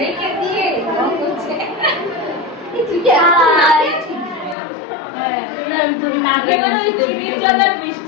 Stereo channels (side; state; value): right; drops out; at 4.5 s